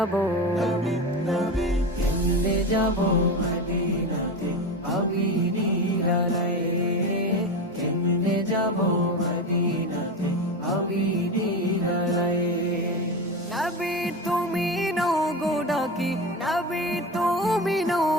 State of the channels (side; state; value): both; normal; correlation 0.22